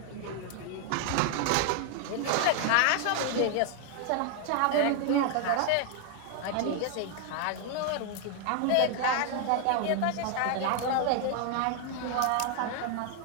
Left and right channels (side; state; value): both; different; correlation 0.00